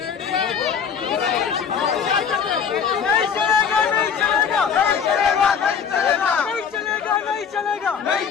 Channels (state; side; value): quieter; right; 6.9 dB